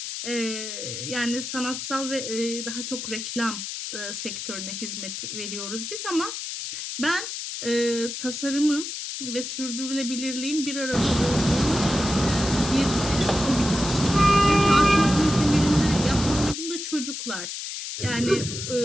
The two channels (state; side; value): noise; left; hiss, 6 dB below the sound